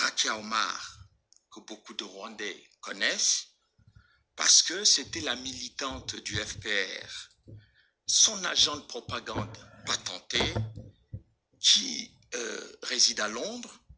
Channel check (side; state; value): both; identical; correlation 1.00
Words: Omar, que beaucoup de Rwandais connaissent, parce que c'était la militante du FPR, son agent de propagande patenté, qui réside à Londres